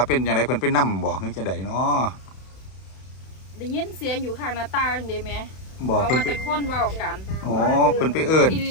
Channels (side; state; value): right; late; 32 ms